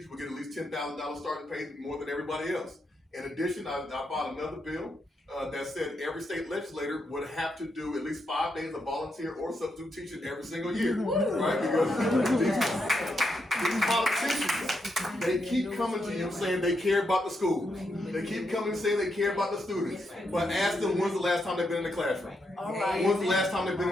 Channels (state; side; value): normal; both; correlation 0.82